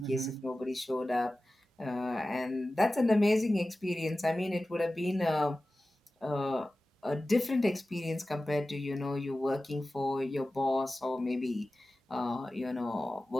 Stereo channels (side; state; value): both; normal; correlation 0.95